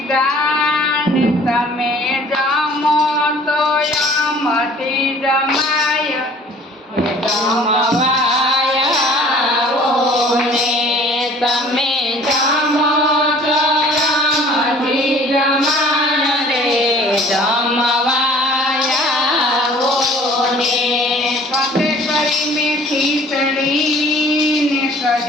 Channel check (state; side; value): normal; both; correlation 0.51